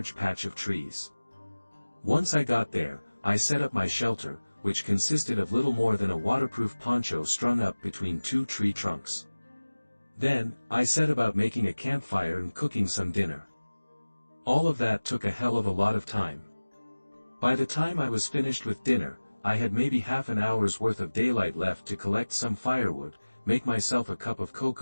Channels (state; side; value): inverted; both; correlation -1.00